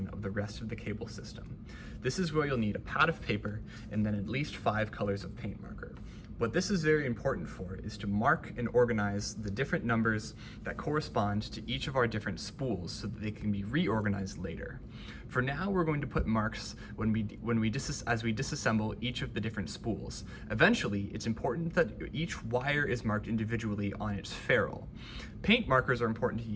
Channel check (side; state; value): both; identical; correlation 1.00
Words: of the rest of the cable system. This is where you'll need a pad of paper and then at least 5 colors of paint marker. What this is very important for is to mark and organize the different numbers that correspond to each of our different spools so that they can be reorganized later. For now, we're going to put marks as we disassemble each of the different spools. Eventually, it's important that each wire is marked individually on its ferrule. Paint markers are important to